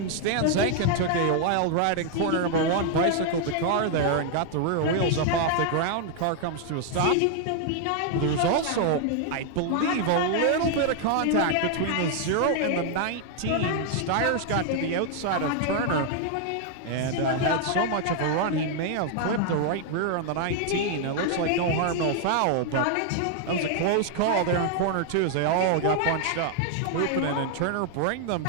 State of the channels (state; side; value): different; both; correlation 0.00